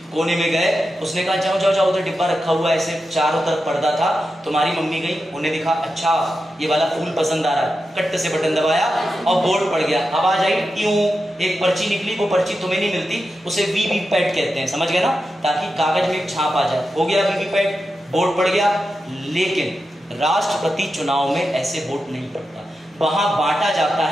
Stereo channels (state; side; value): normal; both; correlation 0.90